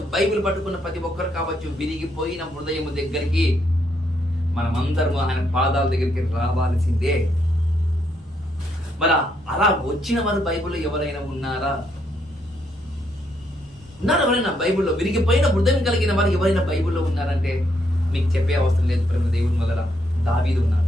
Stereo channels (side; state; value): both; normal; correlation 0.75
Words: బైబిల్ పట్టుకున్న ప్రతి ఒక్కరు కావచ్చు, విరిగిపోయిన హృదయము దగ్గరికి మనమందరము ఆయన పాదాల దగ్గరికి రావాల్సిందే. మరి అలా వచ్చిన వారు బైబిల్లో ఎవరైనా ఉన్నారా? ఎవరైనా బైబిల్లో విరిగిపోయిన హృదయం కలిగిన వారు ఎవరైనా బైబిల్లో ఉన్నారంటే మీకు చెప్పే అవసరం లేదు ప్రేమ దేవుని వల్ల. దావీదు